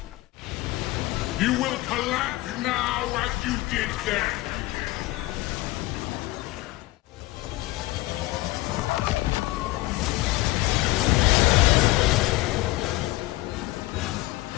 You will collapse now as you did then.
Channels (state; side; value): quieter; right; 19.6 dB